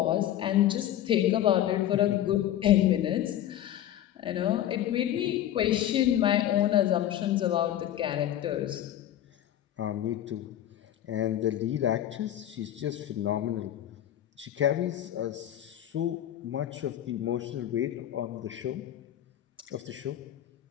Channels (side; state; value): right; quieter; 11.9 dB